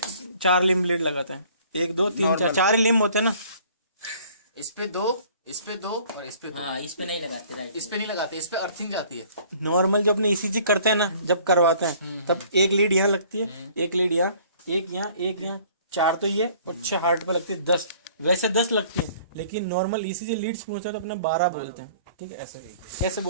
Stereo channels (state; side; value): inverted; both; correlation -0.54